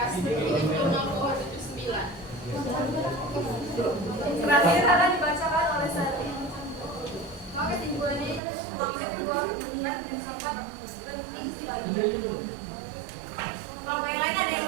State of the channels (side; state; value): left; drops out; at 8.4 s